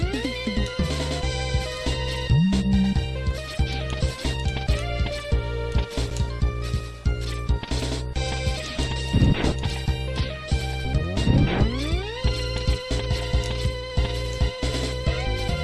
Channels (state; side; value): identical; both; correlation 1.00